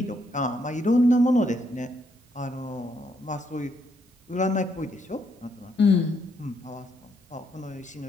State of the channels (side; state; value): both; normal; correlation 0.75